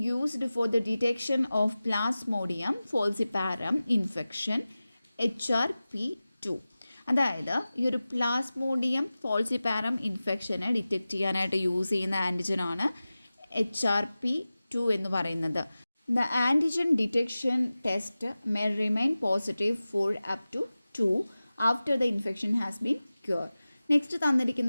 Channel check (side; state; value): both; inverted; correlation -0.96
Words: used for the detection of Plasmodium falciparum infection HRP2. അതായത് ഈ ഒരു പ്ലാസ്മോഡിയം ഫോൾസിപാരം ഇൻഫെക്ഷനെ ഡിറ്റക്റ്റ് ചെയ്യാനായിട്ട് യൂസ് ചെയ്യുന്ന ആൻറ്റിജനാണ് HRP2 എന്ന് പറയുന്നത്. The antigen detection test may remain positive for up to 2 after the infection has been cured. Next